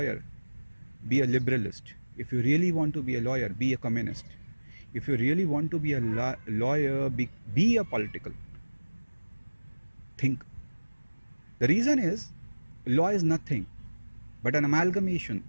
be a liberalist. If you really want to be a lawyer, be a communist. If you really want to be a lawyer, be a political. Think. The reason is, law is nothing but an amalgamation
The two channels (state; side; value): inverted; both; correlation -1.00